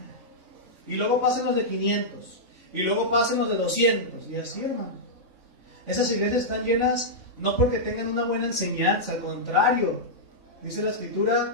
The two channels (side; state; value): left; late; 3.4 ms